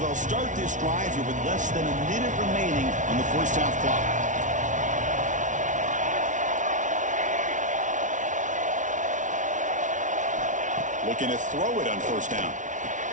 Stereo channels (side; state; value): left; late; 0.37 ms